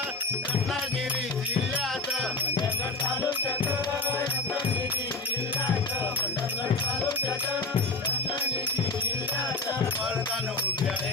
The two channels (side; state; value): right; quieter; 3.4 dB